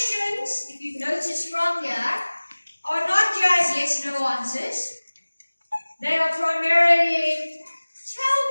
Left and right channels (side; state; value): both; inverted; correlation -1.00